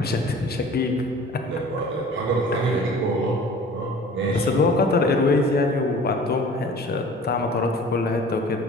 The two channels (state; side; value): normal; both; correlation 0.45